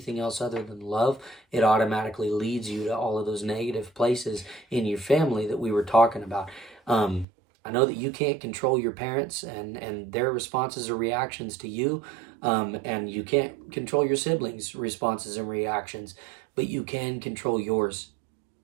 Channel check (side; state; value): left; drops out; at 7.2 s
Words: else other than love, it automatically leads you to all of those negative places in your family that we were talking about. I know that you can't control your parents and their responses or reactions to you, and you can't control your siblings' responses and reactions, but you can control yours.